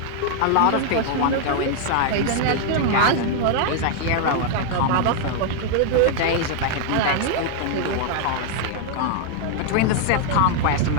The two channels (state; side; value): different; both; correlation 0.00